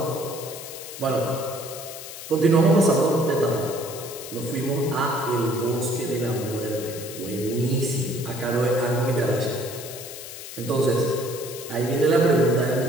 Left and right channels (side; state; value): left; noise; hiss, 11 dB below the sound